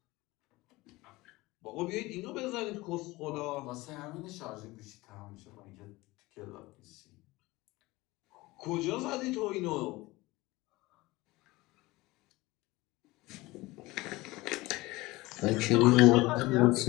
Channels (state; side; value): quieter; right; 20.6 dB